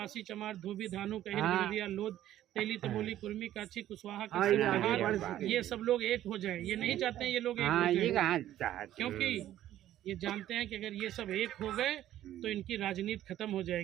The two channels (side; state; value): left; quieter; 12.8 dB